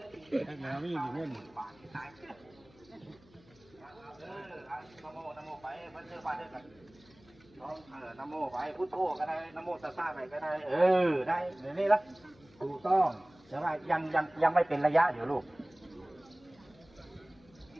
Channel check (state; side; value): noise; left; hum, 27 dB below the sound